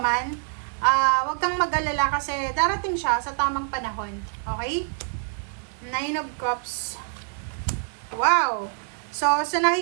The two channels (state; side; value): silent; left; 61 dB below the other